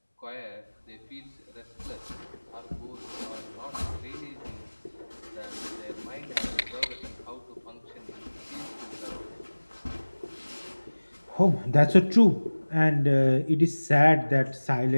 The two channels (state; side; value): inverted; both; correlation -1.00